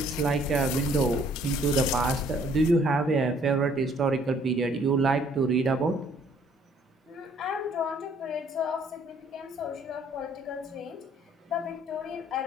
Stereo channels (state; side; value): normal; both; correlation 0.61